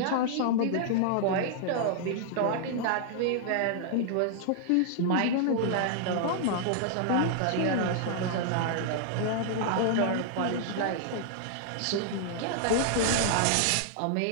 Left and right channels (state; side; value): different; both; correlation -0.01